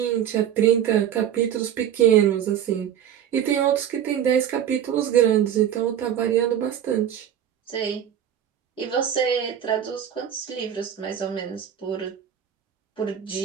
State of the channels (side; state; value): left; quieter; 9.7 dB